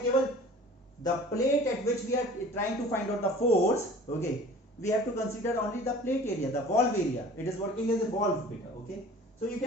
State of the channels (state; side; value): normal; both; correlation 0.45